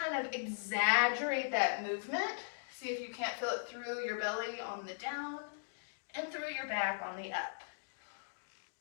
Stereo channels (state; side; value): silent; right; digital silence